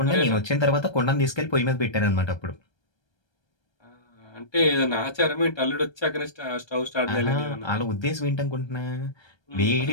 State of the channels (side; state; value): right; late; 1.3 ms